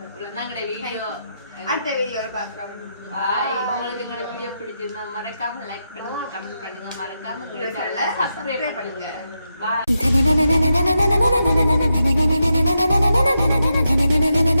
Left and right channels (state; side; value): inverted; both; correlation -0.85